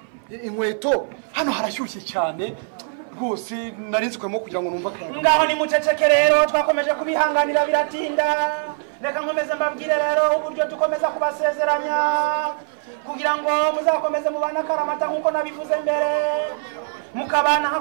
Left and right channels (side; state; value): left; silent; 61 dB below the other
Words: inkweto hano harashyushye cyane rwose narinzwemo kugira ngo numva akayaga. ngaho ni muceceke rero twakomeje kubihanganira biratinda reka nkomeze mbabwire rero uburyo dukomeza kubasezeranya kugira ngo muzakomeze mubana akaramata nk'uko nabivuze mbere mukabana nka